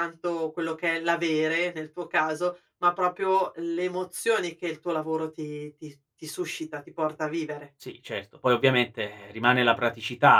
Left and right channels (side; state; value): both; identical; correlation 1.00